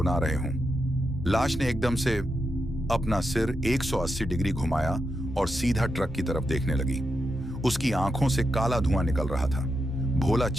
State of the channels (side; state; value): both; normal; correlation 0.85